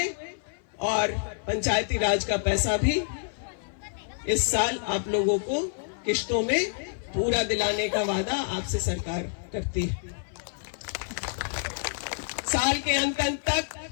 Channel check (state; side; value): silent; right; 55 dB below the other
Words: और पंचायती राज का पैसा भी इस साल आप लोगों को किश्तों में पूरा दिलाने का वादा आपसे सरकार करती है। साल के अंत